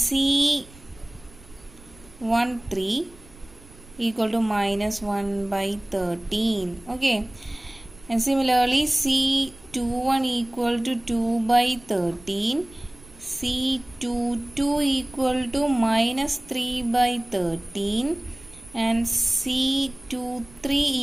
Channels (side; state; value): right; noise; rumble, 23 dB below the sound